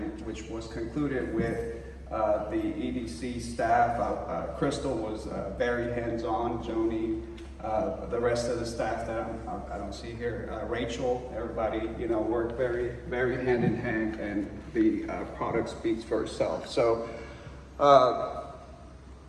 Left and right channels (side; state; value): both; identical; correlation 1.00